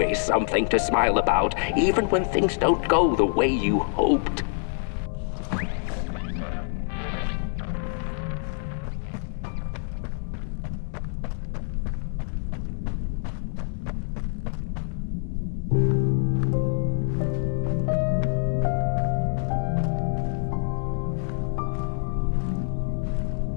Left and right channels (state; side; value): silent; right; digital silence